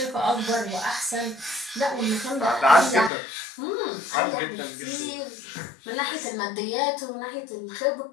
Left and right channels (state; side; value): drops out; right; at 3.1 s